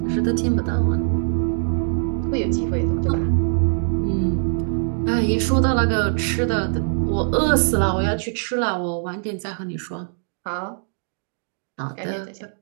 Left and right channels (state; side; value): silent; left; digital silence